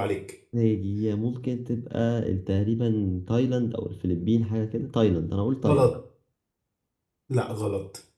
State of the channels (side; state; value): both; identical; correlation 1.00